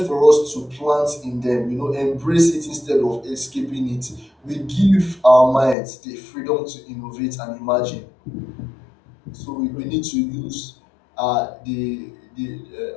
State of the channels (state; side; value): drops out; right; at 5.8 s